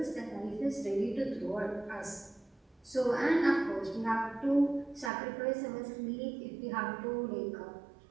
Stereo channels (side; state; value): left; drops out; at 5.1 s